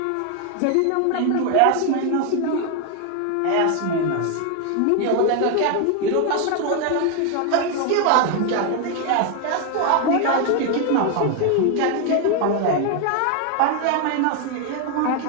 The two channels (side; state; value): both; different; correlation 0.01